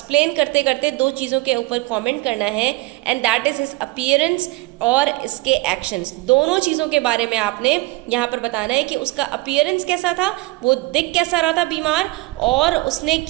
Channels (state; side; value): quieter; left; 21.7 dB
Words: करते करते दो चीज़ों के ऊपर कमेंट करना है and that is his appearance और इसके एक्शंस. दोनों चीज़ों के बारे में आपने यहाँ पर बताना है कि उसका अपीयरेंस कैसा था, वो दिख कैसा रहा था बीमार, और उसने